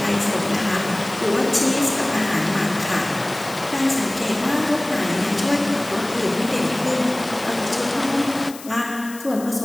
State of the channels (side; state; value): left; noise; hiss, 16 dB below the sound